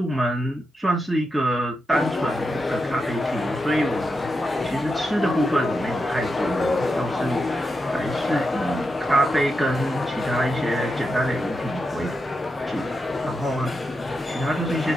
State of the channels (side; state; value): both; normal; correlation 0.87